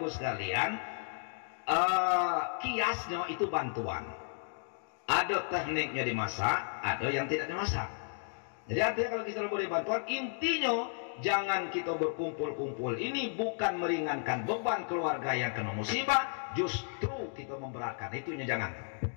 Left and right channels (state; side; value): silent; right; 55 dB below the other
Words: sekalian, kiasnya itu bantuan. Ada tekniknya dimasak, ada yang tidak dimasak. Jadi artinya kalau kita boleh bantuan, intinya jangan kita berkumpul-kumpul. Ini bukan meringankan beban keluarga yang kena musibah, justru kita memberatkan. Itunya jangan.